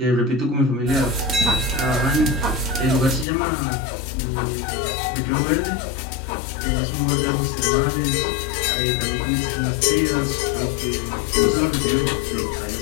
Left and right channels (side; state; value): right; drops out; at 3.2 s